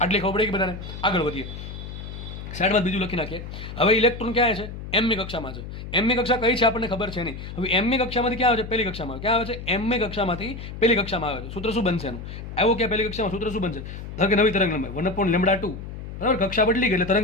આટલી ખબર પડે કે બધાને? આગળ વધીએ, સાઈડમાં બીજું લખી નાખીએ. હવે ઇલેક્ટ્રોન ક્યાં છે? mમી કક્ષામાં છે. mમી કક્ષા કઈ છે આપણને ખબર છે નહીં. હવે mમી કક્ષામાંથી ક્યાં આવે છે? પહેલી કક્ષામાં. ક્યાં આવે છે? mમી કક્ષામાંથી પહેલી કક્ષામાં આવે છે. સૂત્ર શું બનશે એનું? આવ્યો ક્યાં? પહેલી કક્ષામાં. સૂત્ર શું બનશે? ધારો કે નવી તરંગ લંબાઈ 1/λ2, બરાબર. કક્ષા બદલી ગઈ એટલે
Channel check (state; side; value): noise; left; hum, 10 dB below the sound